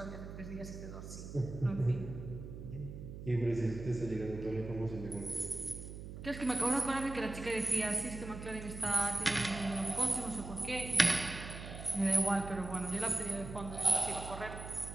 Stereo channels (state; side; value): noise; right; hum, 10 dB below the sound